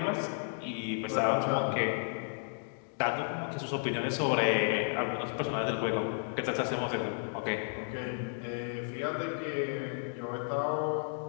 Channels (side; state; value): right; silent; digital silence